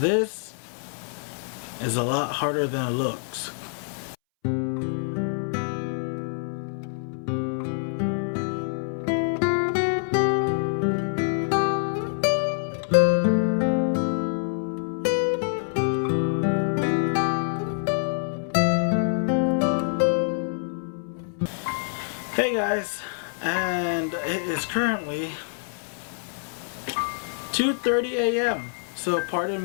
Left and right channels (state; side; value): silent; right; 61 dB below the other